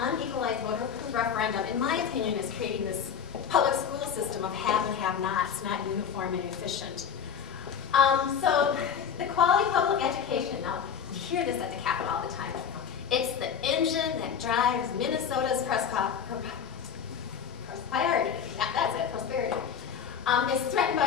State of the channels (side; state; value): right; quieter; 7.6 dB